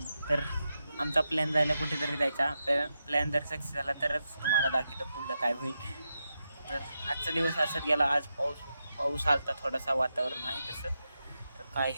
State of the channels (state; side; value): inverted; both; correlation -0.87